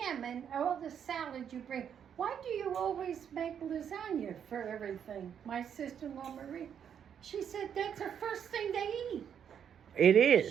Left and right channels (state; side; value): quieter; left; 8.3 dB